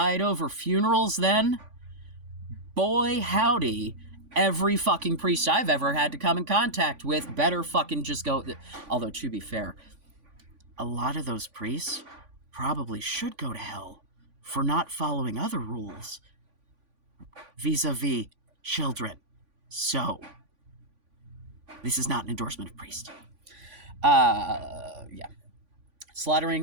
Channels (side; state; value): left; late; 3.5 ms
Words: over funerals then? Boy, howdy. Every fucking priest I've ever had to come in contact with better fucking just go. Although, to be fair, a lot of those priests probably should go to hell for not following other rules vis-a-vis children. So, this is not an endorsement of priests. Yeah.